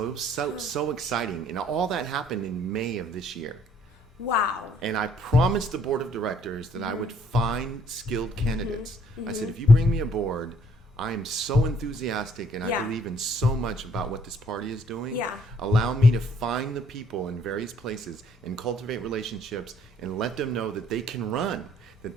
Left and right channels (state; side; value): normal; both; correlation 0.64